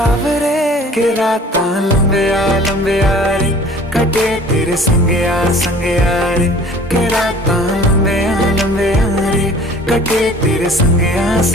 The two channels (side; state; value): both; normal; correlation 0.49